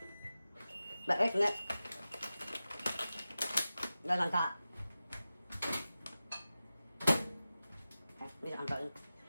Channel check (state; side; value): inverted; both; correlation -0.94